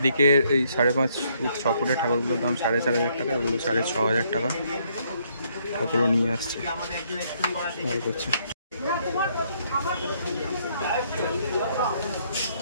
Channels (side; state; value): both; inverted; correlation -0.70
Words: এই 5.5 ফুট 6 ফুটের ঠাকুরগুলোর দাম 4,500 টাকা, এগুলো 6,500 টাকা। ঠাকুরও নিয়ে আসছে, ভালো করছে।